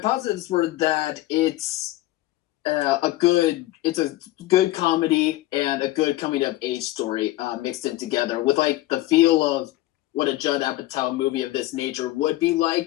were that it's a good comedy and a good coming of age story mixed in together with like the feel of what a Judd Apatow movie of this nature would be like,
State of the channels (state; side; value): quieter; right; 16.8 dB